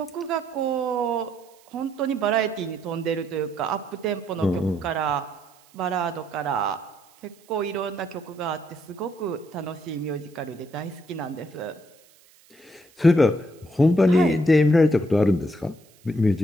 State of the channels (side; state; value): right; noise; hiss, 29 dB below the sound